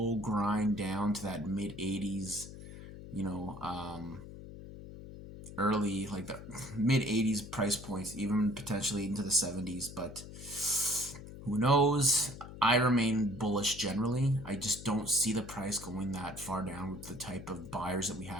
grind down to that mid 80s, early, like the mid 80s price points, even potentially into the 70s, but who knows? I remain bullish generally. I just don't see the price going that far down with the type of buyers that we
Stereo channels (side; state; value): left; noise; hum, 13 dB below the sound